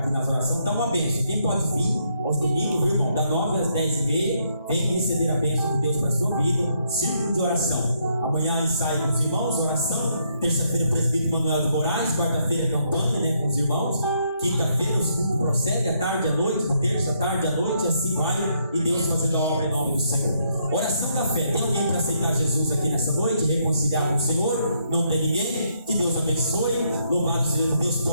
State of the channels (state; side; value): inverted; both; correlation -0.74